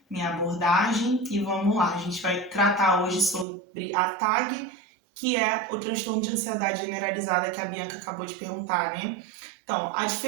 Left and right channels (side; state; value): left; drops out; at 3.5 s